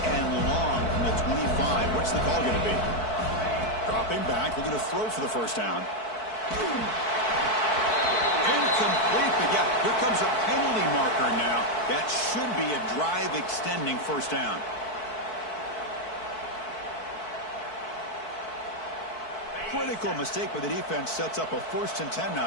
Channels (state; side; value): late; right; 4.6 ms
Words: and long from the 25. What's the call going to be? Dropping back, looking to throw for the first down. Incomplete, but yeah, here comes a penalty marker now. That should be a drive-extending first down. Critical mistake by the defense sets up a 1st and 10 now